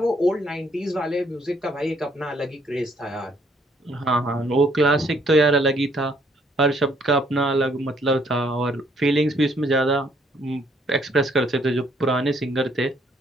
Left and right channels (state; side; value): normal; both; correlation 0.67